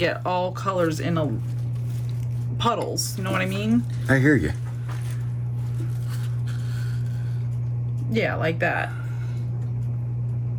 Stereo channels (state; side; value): identical; both; correlation 1.00